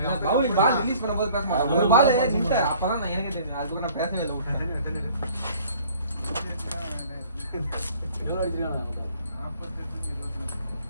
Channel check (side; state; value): both; inverted; correlation -0.53